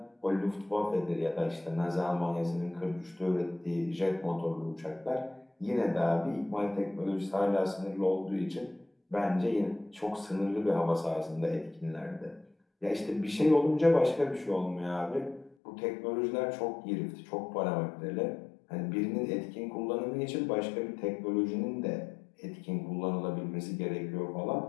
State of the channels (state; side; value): drops out; right; at 15.6 s